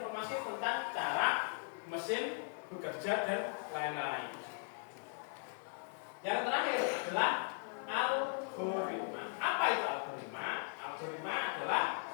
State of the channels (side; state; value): right; silent; 52 dB below the other